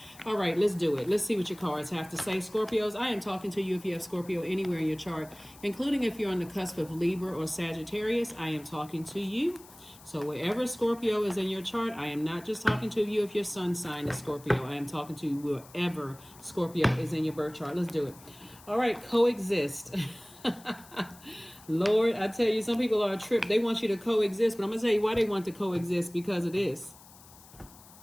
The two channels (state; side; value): noise; left; hiss, 22 dB below the sound